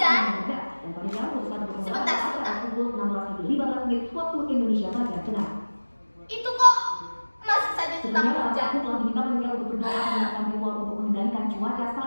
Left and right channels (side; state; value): both; inverted; correlation -1.00